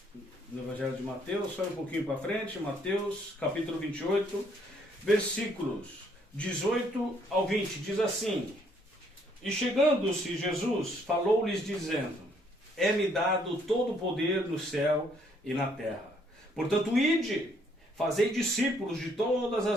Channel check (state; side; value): normal; both; correlation 0.67